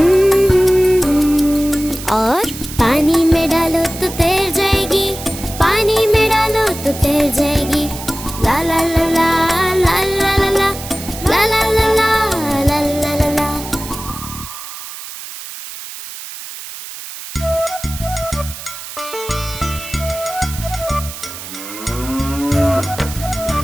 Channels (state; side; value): noise; right; hiss, 11 dB below the sound